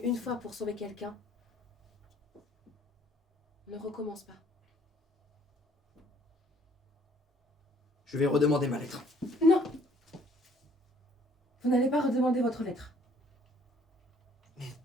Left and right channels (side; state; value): both; normal; correlation 0.60